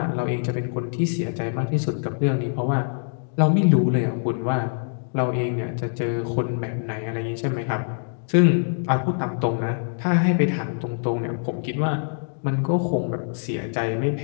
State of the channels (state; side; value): silent; right; digital silence